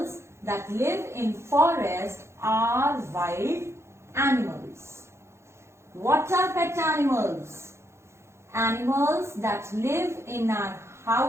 that live in forest are wild animals. What are pet animals? Animals that live in our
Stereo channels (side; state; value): left; late; 0.13 ms